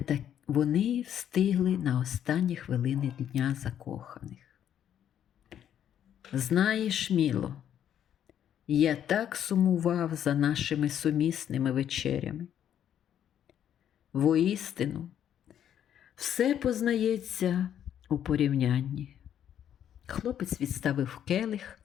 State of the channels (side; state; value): right; quieter; 9.9 dB